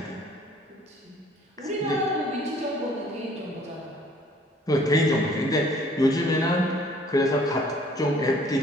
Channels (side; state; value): both; normal; correlation 0.57